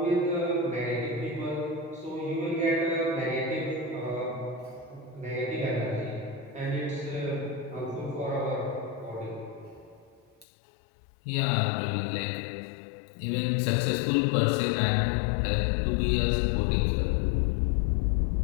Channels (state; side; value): drops out; right; at 10.5 s